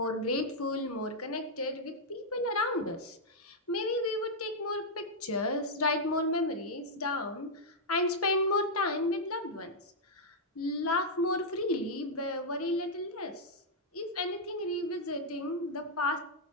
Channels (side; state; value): both; normal; correlation -0.05